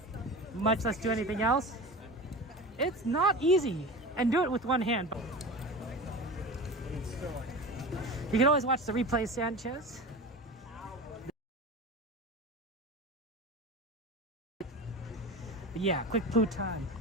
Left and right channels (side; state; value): both; normal; correlation 0.31